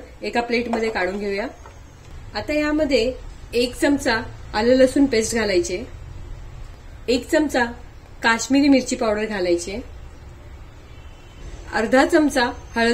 एका प्लेटमध्ये काढून घेऊया। आता यामध्ये 1 चमचा आलं लसूण पेस्ट घालायचे, 1 चमचा काश्मीरी मिरची पावडर घालायचे, अर्धा चमचा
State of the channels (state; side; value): identical; both; correlation 1.00